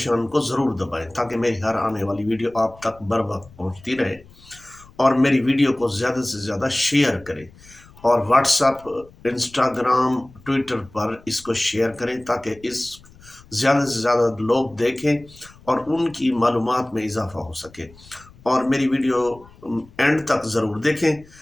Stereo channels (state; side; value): noise; left; rumble, 24 dB below the sound